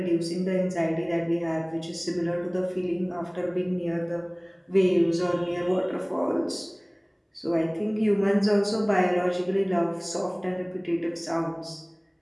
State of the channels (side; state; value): both; identical; correlation 1.00